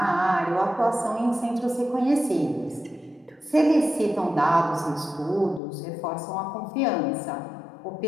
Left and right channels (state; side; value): drops out; right; at 5.6 s